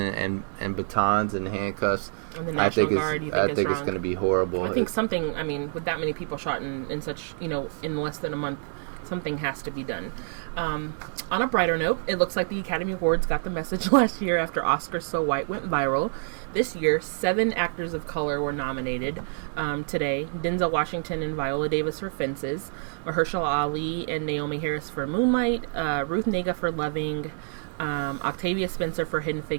batons and handcuffs, and the National Guard, you think it's wrong? It's going to be horrible. I think with that many people shot in such in less than a month. Something has to be done. On a brighter note, it looks like the Academy Awards got the message last year after Oscars So White went viral. This year, 7 actors of color were nominated today. Denzel Washington and Viola Davis for Fences, Mahershala Ali and Naomi Harris for Moonlight, Ruth Negga for Loving, Octavia Spencer for Hidden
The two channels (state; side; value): silent; left; digital silence